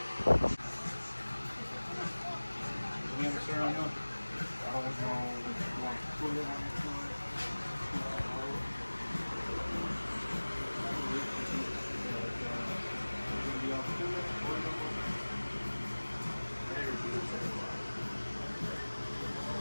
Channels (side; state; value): both; inverted; correlation -1.00